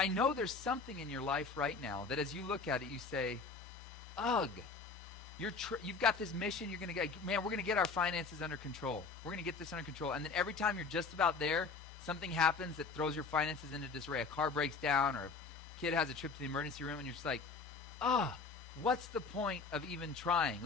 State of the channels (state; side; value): quieter; right; 4.6 dB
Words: know there's something in your life right now that as you look at it, you say, ugh. You've got this mission. You're going to get, man, we're going to get our finances under control. We're going to get this under control. And then every time you're just about there, something happens that throws your finances into disarray. A car breaks down or a kid has a trip to the emergency room and you're just like, what's the point of even trying?